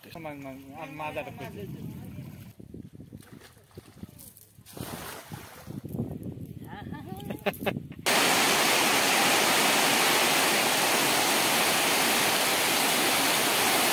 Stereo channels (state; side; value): identical; both; correlation 1.00